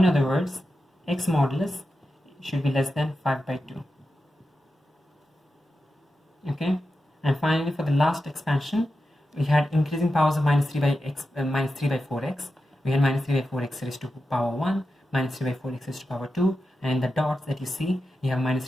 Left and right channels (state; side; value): normal; both; correlation 0.90